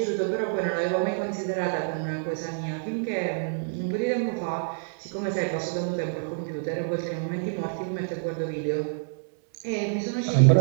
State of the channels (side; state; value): left; silent; 60 dB below the other